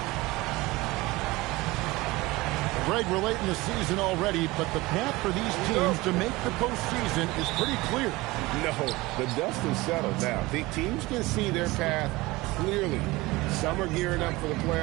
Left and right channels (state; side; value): quieter; left; 21.0 dB